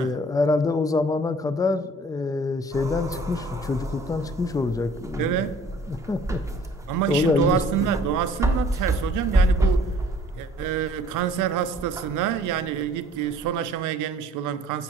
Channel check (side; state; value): both; normal; correlation 0.54